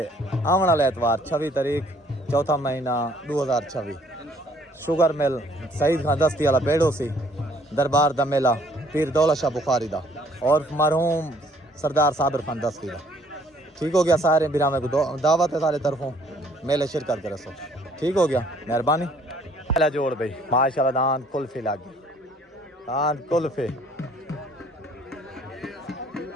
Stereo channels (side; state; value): both; normal; correlation 0.61